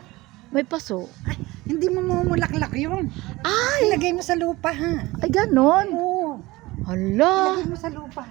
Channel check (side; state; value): left; quieter; 20.3 dB